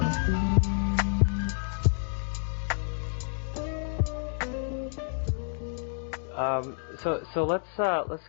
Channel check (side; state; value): right; silent; digital silence